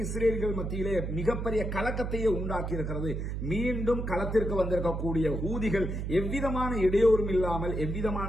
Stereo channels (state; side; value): noise; right; hum, 3 dB below the sound